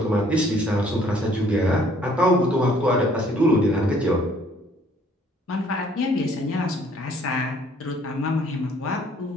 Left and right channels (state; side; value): normal; both; correlation 0.60